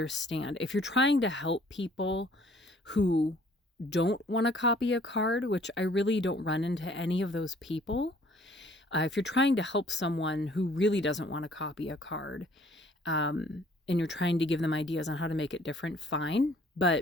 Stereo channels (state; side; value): normal; both; correlation 0.58